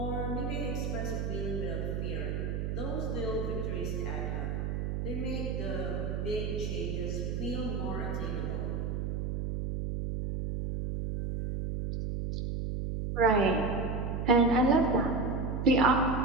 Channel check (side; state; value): right; noise; hum, 2 dB below the sound